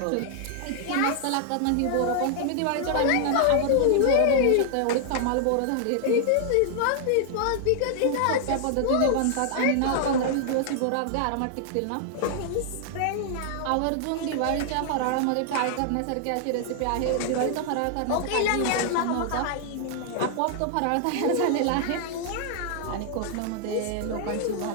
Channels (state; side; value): different; both; correlation 0.00